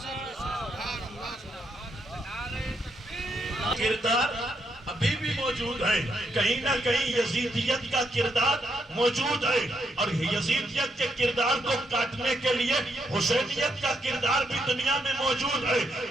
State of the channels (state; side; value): normal; both; correlation 0.78